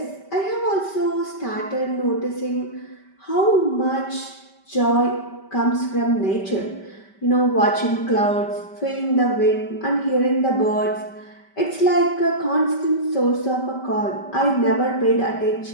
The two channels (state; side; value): late; right; 5.1 ms